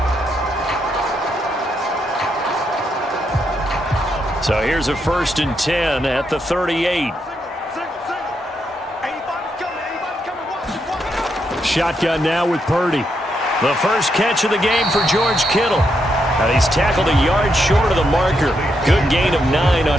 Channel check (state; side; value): normal; both; correlation 0.80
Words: So here's a 1st and 10 at the 38. Shotgun now with Purdy. The first catch of the game for George Kittle. And he's tackled a yard short of the marker. Good gain of 9 on